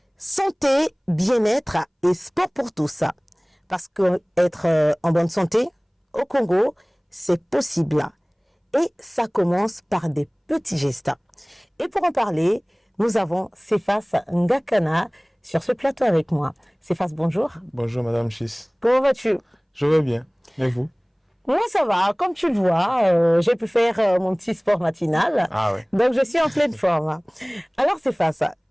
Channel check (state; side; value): identical; both; correlation 1.00